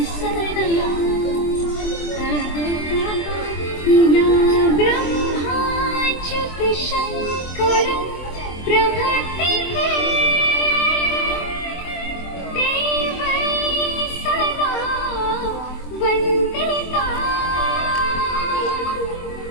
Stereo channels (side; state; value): right; late; 24 ms